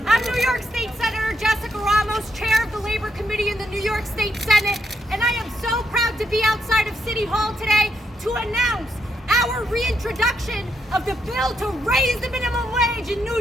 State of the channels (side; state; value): both; normal; correlation 0.80